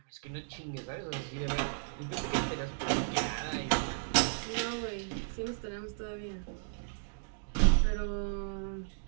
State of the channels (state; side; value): silent; left; digital silence